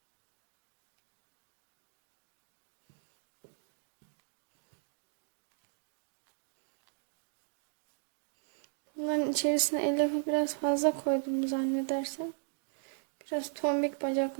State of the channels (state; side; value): silent; left; digital silence